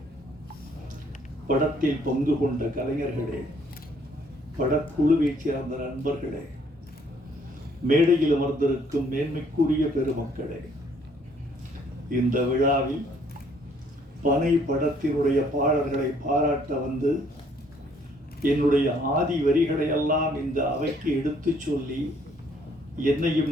படத்தில் பங்கு கொண்ட கலைஞர்களே, படக்குழுவைச் சேர்ந்த நண்பர்களே, மேடையில் அமர்ந்திருக்கும் மேன்மைக்குரிய பெருமக்களே, இந்த விழாவில் பனை படத்தினுடைய பாடல்களை பாராட்ட வந்து என்னுடைய ஆதி வரிகளை எல்லாம் இந்த அவைக்கு எடுத்து சொல்லி என்னையும்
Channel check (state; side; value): normal; both; correlation 0.64